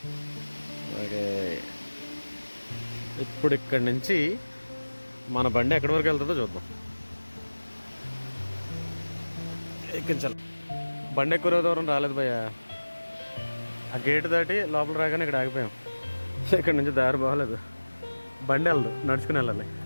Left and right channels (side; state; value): both; inverted; correlation -1.00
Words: అలాగే ఇప్పుడు ఇక్కడి నుంచి మన బండి ఎక్కడి వరకు వెళ్తుందో చూద్దాం. ఎక్కించాలి. బండి ఎక్కువ దూరం రాలేదు భయ్య. ఆ గేట్ దాటి లోపల రాగానే ఇక్కడ ఆగిపోయాం. ఇక్కడ నుంచి దారి బాగలేదు, బండి వెళ్ళదు, నడుచుకుని వెళ్ళాలి.